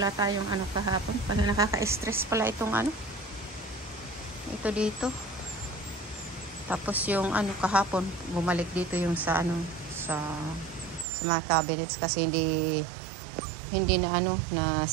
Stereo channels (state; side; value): drops out; left; at 11.1 s